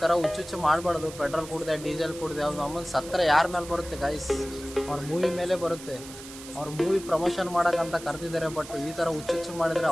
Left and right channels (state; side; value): noise; right; hiss, 15 dB below the sound